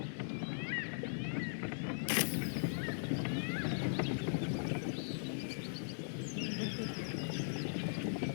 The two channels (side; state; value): right; silent; 51 dB below the other